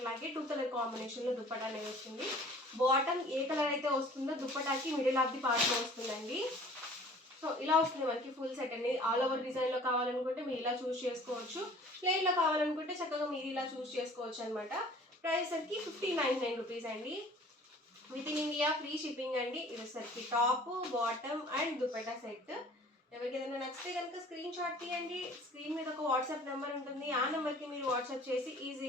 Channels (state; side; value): normal; both; correlation 0.49